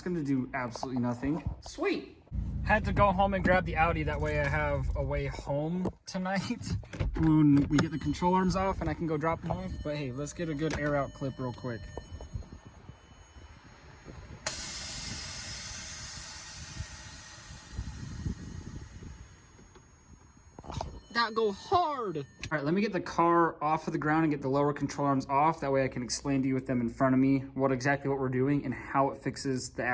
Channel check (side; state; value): both; identical; correlation 1.00